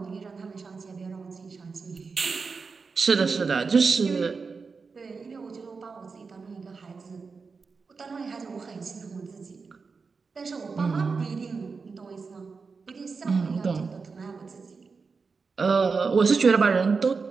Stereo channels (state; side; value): quieter; left; 4.8 dB